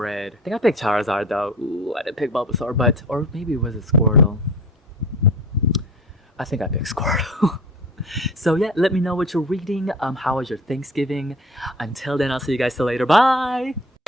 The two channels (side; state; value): both; normal; correlation 0.40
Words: I think I picked Charizard though. Ooh, I didn't pick Bulbasaur, or maybe it was a Squirtle. I think I picked Squirtle. So yeah, let me know what you're reading. How was your Thanksgiving? Until then, I'll see you guys till later. Bye!